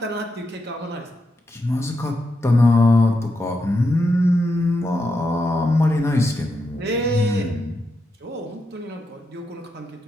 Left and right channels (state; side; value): normal; both; correlation 0.85